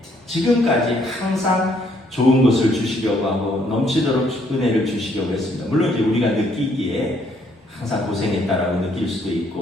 지금까지 항상 좋은 것을 주시려고 하고 넘치도록 은혜를 주시려고 했습니다. 물론 이제 우리가 느끼기에 항상 고생했다라고 느낄 수도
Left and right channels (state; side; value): normal; both; correlation 0.68